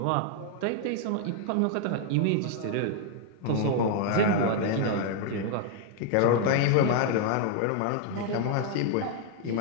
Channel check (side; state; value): both; different; correlation 0.00